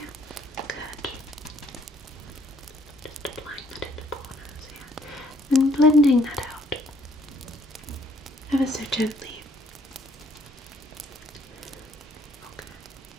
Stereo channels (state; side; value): normal; both; correlation 0.64